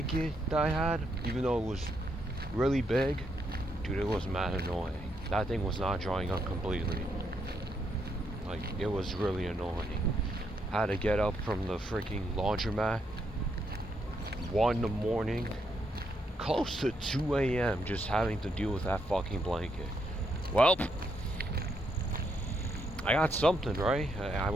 that I had, even though it was really big, dude, it was mad annoying. That thing was not drying up completely. Like, it was really annoying. I had to get up from the freaking laundromat 1 in the morning, close to 2 a.m. just having to deal with that fucking blanket. Well, I got something, right? I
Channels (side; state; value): both; normal; correlation 0.77